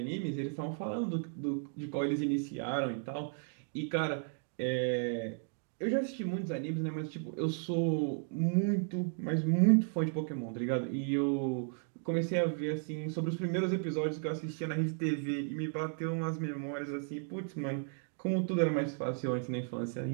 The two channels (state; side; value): silent; left; 55 dB below the other